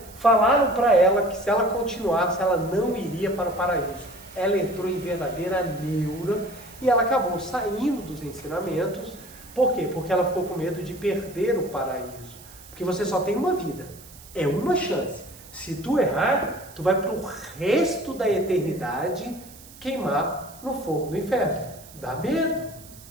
falaram para ela que se ela continuasse, ela não iria para o paraíso. Ela entrou em verdadeira neura e ela acabou saindo dos ensinamentos. Por quê? Porque ela ficou com medo de perder o paraíso. Porque você só tem uma vida, é uma chance. Se tu errar, tu vai para o resto da eternidade queimar no fogo do inferno. Dá medo.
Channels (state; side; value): noise; right; hiss, 20 dB below the sound